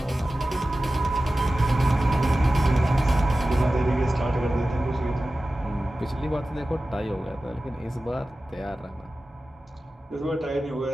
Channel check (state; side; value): normal; both; correlation 0.95